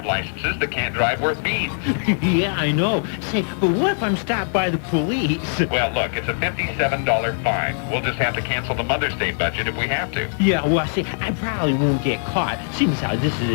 licenses that can't drive worth beans. Yeah, I know. Say, but what if I'm stopped by the police? Well, look, it's a $57 fine. We'll just have to cancel the Mother's Day budget if we have to. Yeah, well, see, I probably won't get caught. Seems how this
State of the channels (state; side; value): silent; right; digital silence